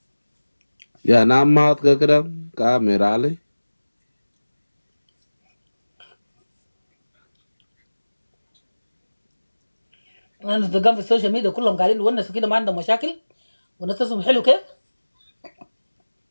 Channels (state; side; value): inverted; both; correlation -1.00